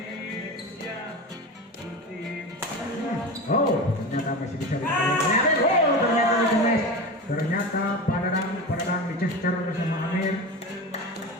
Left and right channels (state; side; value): normal; both; correlation 0.27